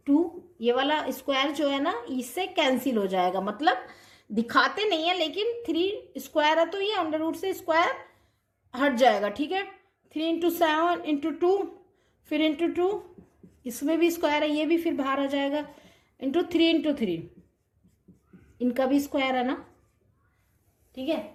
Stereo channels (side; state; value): both; identical; correlation 1.00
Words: 2, ये वाला स्क्वायर जो है ना इससे कैंसिल हो जाएगा, मतलब दिखाते नहीं है लेकिन 3 स्क्वायर है तो ये अंडर रूट से स्क्वायर हट जाएगा। ठीक है, 3 इंटू 7 इंटू 2, फिर इंटू 2, इसमें भी स्क्वायर है, ये भी फिर बाहर आ जाएगा, इंटू 3 इंटू 3, इनका भी स्क्वायर है ना। ठीक है,